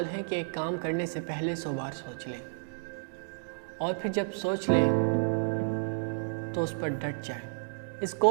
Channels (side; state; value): left; silent; digital silence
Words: ہے کہ ایک کام کرنے سے پہلے 100 بار سوچ لیں، اور پھر جب سوچ لیں تو اس پر ڈٹ جائیں۔ اس